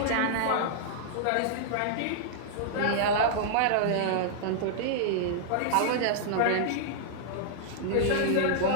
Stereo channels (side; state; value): both; different; correlation -0.01